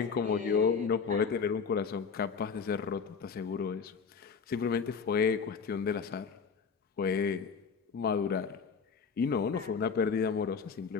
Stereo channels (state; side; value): quieter; right; 5.8 dB